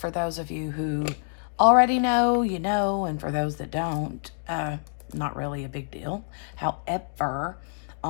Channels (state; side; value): silent; right; 60 dB below the other